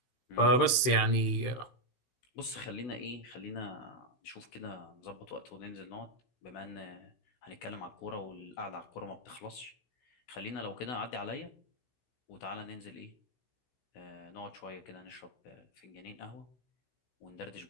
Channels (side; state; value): right; late; 16 ms